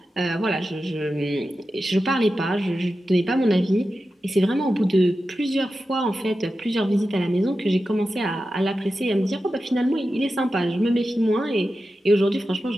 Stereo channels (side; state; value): both; normal; correlation 0.92